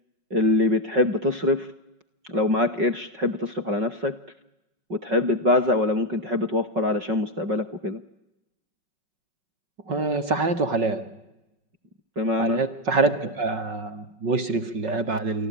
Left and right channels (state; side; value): late; left; 5.4 ms